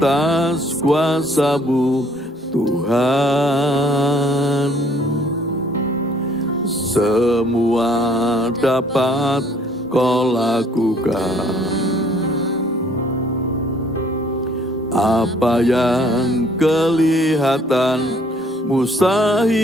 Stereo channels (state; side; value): normal; both; correlation 0.61